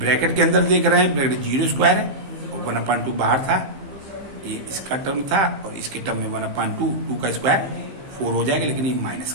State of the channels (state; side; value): late; left; 15 ms